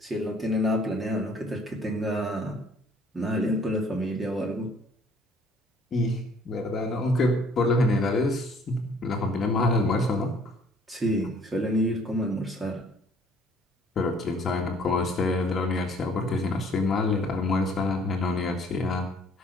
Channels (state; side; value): normal; both; correlation 0.58